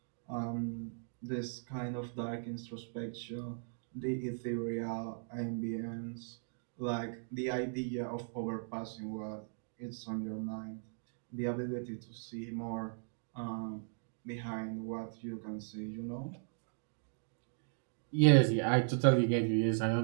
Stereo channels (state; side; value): silent; left; digital silence